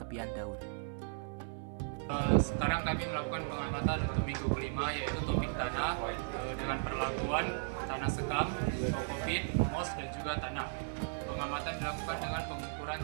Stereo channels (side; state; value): left; silent; 54 dB below the other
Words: daun. Sekarang kami melakukan pengamatan untuk minggu kelima, yaitu topik tanah dengan perlakuan tanah sekam, kokopit, moss, dan juga tanah. Pengamatan dilakukan dengan pengukuran